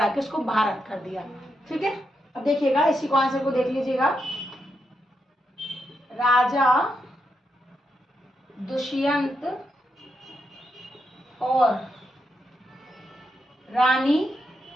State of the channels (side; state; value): both; normal; correlation 0.83